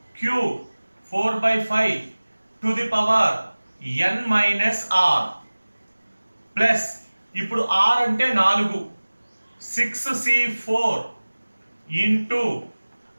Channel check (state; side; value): inverted; both; correlation -1.00